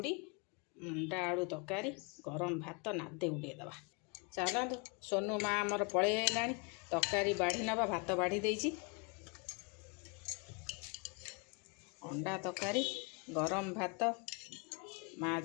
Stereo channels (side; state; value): right; quieter; 32.2 dB